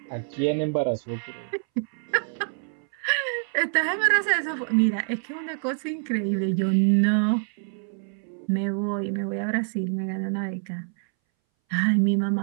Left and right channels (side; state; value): left; silent; 60 dB below the other